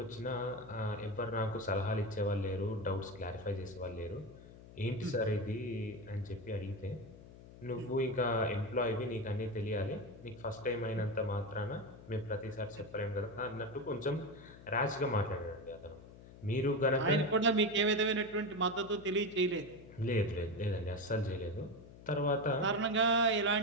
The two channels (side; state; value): left; noise; hum, 18 dB below the sound